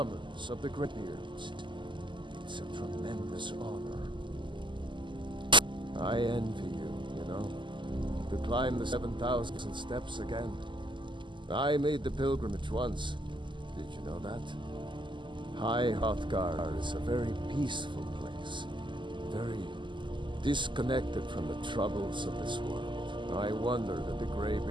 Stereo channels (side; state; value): left; late; 0.24 ms